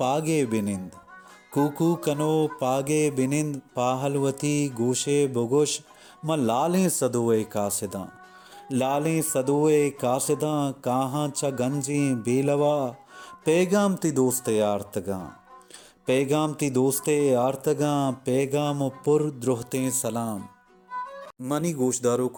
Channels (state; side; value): identical; both; correlation 1.00